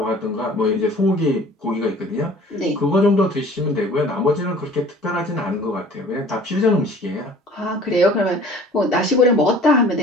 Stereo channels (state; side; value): normal; both; correlation 0.48